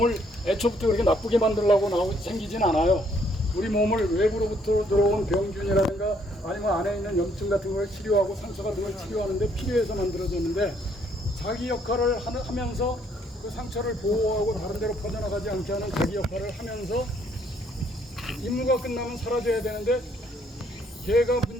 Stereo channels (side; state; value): both; normal; correlation 0.67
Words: 애초부터 그렇게 나쁘게 만들려고 생기진 않아요. 우리 몸을 외부로부터 들어온 병균이라든가 아니면 안에 있는 염증 같은 걸 치료하고 상처 같은 걸 치료하는데 필요해서 만들어졌는데 자기 역할을 하면서 그 상처를 보호하고 다른 데로 퍼져나가지 않게 하는 자기 역할을 하면서 임무가 끝나면 사라져야 되는데 걔가